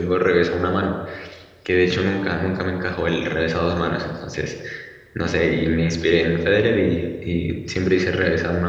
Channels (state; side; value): identical; both; correlation 1.00